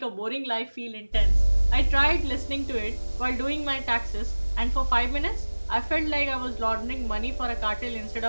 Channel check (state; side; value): inverted; both; correlation -1.00